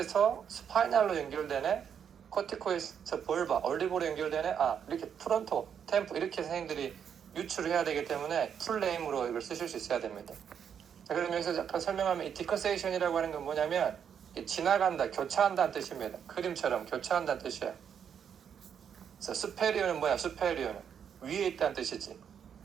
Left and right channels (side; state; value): left; quieter; 8.0 dB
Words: 스파이널로 연결되네. 코티코에서 볼바, 얼리보로 연결되네. 이렇게 프론토, 템포 이렇게 선생님들이 유출을 해야 되기 때문에 풀네임으로 이걸 쓰실 수 있어야 됩니다. 자, 그럼 여기서 아까 설명하면 이 디커세이션이라고 하는 건 뭐냐면 지나간다, 교차한다는 뜻입니다. 그림처럼 교차한다는 뜻이에요. 그래서 수페리어는 뭐야? 수페리어는 위에 있다는 뜻이지.